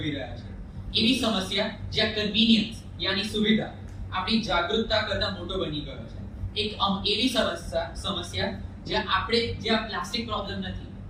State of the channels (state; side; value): identical; both; correlation 1.00